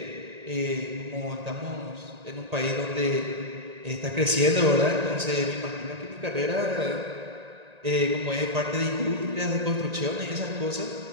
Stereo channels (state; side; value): late; left; 1.8 ms